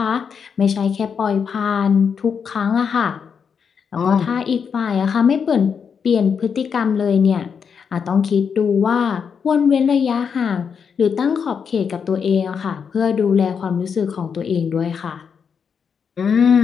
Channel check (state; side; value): quieter; right; 6.6 dB